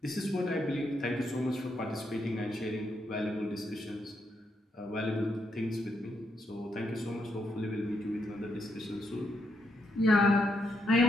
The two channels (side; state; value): both; normal; correlation 0.79